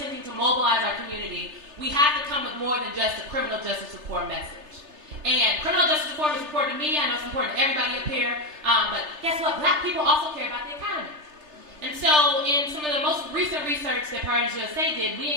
to mobilize our community, we have to come with more than just a criminal justice reform message. And criminal justice reform is important to me. I know it's important to everybody up here. But guess what? Black people also care about the economy. And so in some of the most recent research that Priorities USA did, we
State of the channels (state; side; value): late; left; 3.3 ms